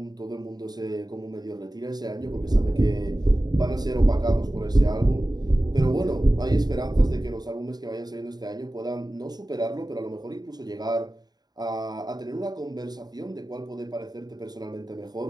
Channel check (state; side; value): late; left; 0.20 ms